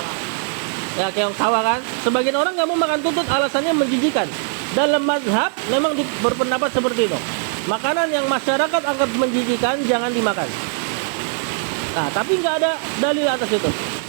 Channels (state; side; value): silent; left; 56 dB below the other